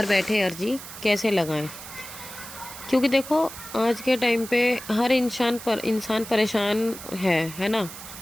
बैठे अर्जी कैसे लगाएं, क्योंकि देखो आज के टाइम पे हर इंसान परेशान है ना।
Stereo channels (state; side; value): noise; right; hiss, 13 dB below the sound